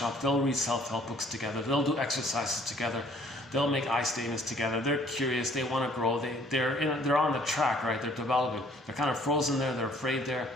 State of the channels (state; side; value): normal; both; correlation 0.59